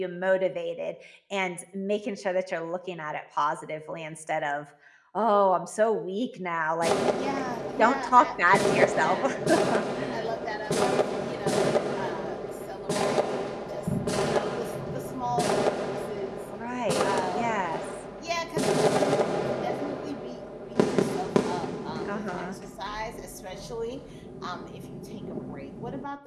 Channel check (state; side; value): identical; both; correlation 1.00